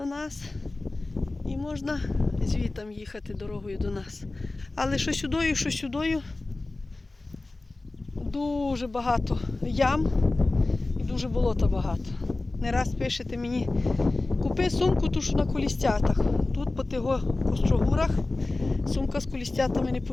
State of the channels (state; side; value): quieter; right; 3.1 dB